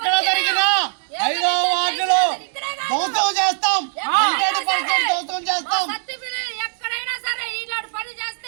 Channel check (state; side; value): silent; left; 65 dB below the other